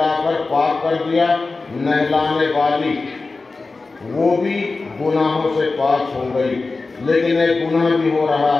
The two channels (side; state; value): right; quieter; 3.8 dB